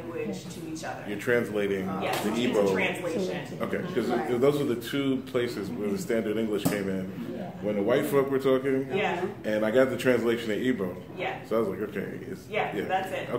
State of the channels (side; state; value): both; identical; correlation 1.00